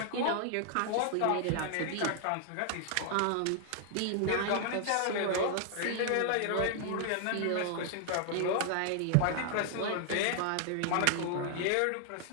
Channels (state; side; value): different; both; correlation 0.00